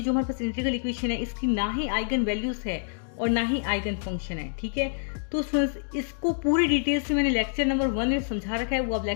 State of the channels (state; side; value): silent; right; digital silence